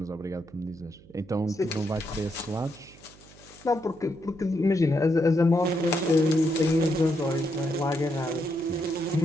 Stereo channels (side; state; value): right; noise; hum, 23 dB below the sound